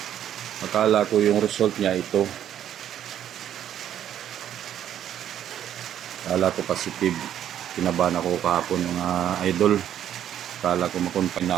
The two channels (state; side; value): quieter; left; 10.5 dB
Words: akala ko yung result niya ito. Akala ko positive. Kinabahan ako kahapon mga idol. Akala ko makonfine na